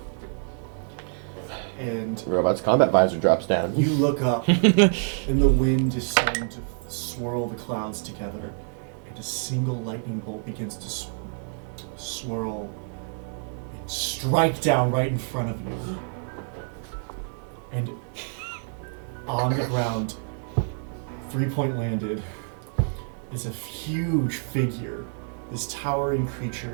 And The robot's combat visor drops down. you look up, and the wind is starting to swirl the clouds together, and a single lightning bolt begins to swirl and strike down right in front of you. And on the ground, 3-point landed, is a huge figure, this towering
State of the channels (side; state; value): left; silent; 60 dB below the other